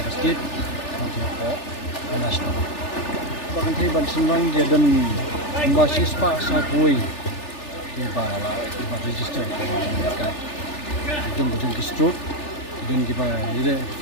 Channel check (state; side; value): late; right; 3.4 ms